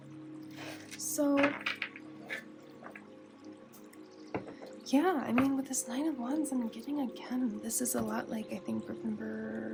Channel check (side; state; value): both; identical; correlation 1.00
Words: So yeah, I mean, with this 9 of Wands, I'm getting again, this is a lot like, I think, group